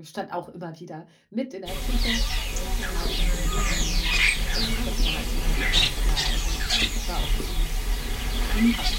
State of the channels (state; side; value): identical; both; correlation 1.00